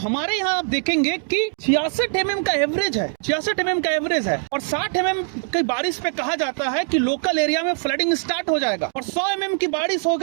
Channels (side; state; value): left; silent; 57 dB below the other